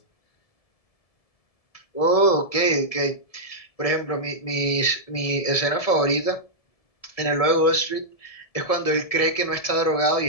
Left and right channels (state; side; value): late; right; 1.7 ms